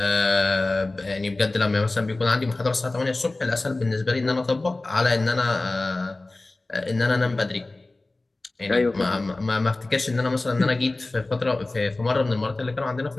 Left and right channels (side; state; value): right; quieter; 3.0 dB